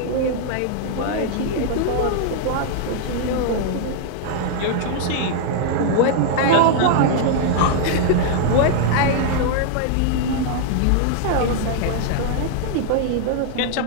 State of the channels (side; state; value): both; different; correlation -0.01